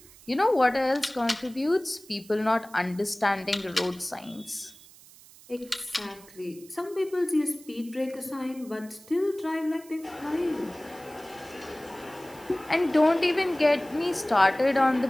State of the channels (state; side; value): noise; right; hiss, 22 dB below the sound